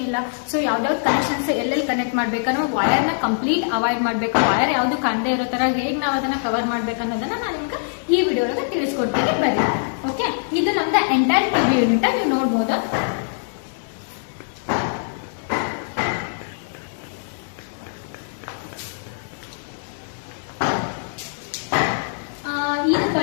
ಸೊ ಯಾವ್ದಾವ್ದು ಕನೆಕ್ಷನ್ಸ್ ಎಲ್ಲೆಲ್ಲಿ ಕನೆಕ್ಟ್ ಮಾಡ್ಬೇಕನ್ನೋ ವೈರ್ ನ ಕಂಪ್ಲೀಟ್ ಅವಾಯ್ಡ್ ಮಾಡ್ಬೇಕು. ವೈರ್ ಯಾವ್ದು ಕಾಣದೇ ಇರೋ ತರ ಹೇಗ್ ನಾವ್ ಅದನ್ನ ಕವರ್ ಮಾಡ್ಬೇಕು ಅನ್ನೋದನ್ನ ನಾನು ನಿಮ್ಗೆ ಈ ವಿಡಿಯೋ ಒಳಗೆ ತಿಳಿಸ್ಕೊಡ್ತೀನಿ. ಬರ್ರಿ. ಓಕೆ, ಇದು ನಮ್ದ ಎಂಟೈರ್ ಟಿವಿ ಯೂನಿಟ್ ನೀವು ನೋಡ್ಬೋದು. ಇದು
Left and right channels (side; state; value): right; silent; 64 dB below the other